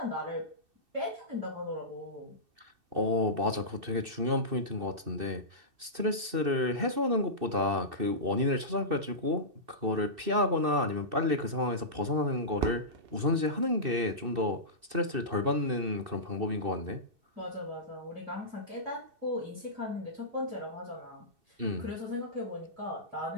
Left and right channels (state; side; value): late; left; 2.6 ms